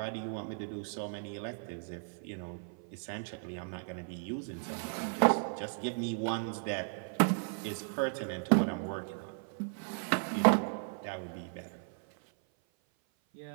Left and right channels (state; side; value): silent; left; 54 dB below the other